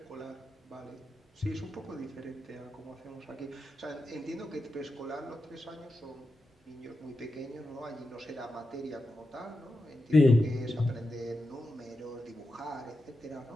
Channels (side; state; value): both; normal; correlation 0.89